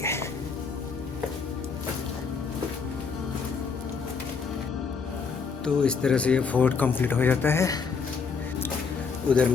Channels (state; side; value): quieter; right; 5.4 dB